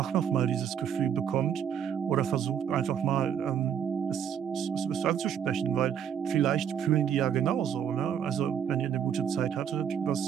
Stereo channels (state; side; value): quieter; left; 8.5 dB